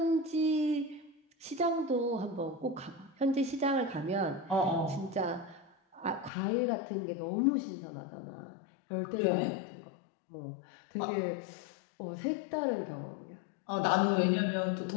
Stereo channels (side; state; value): right; drops out; at 6.3 s